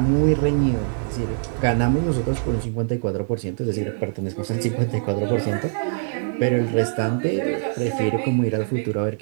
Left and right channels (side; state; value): left; silent; digital silence